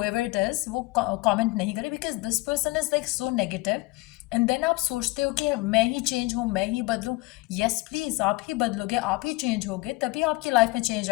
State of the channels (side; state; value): right; quieter; 22.6 dB